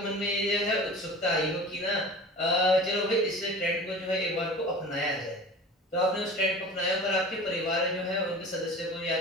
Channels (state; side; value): normal; both; correlation 0.38